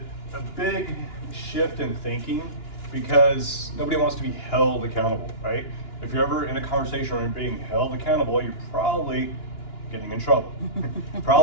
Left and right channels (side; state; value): right; late; 2.9 ms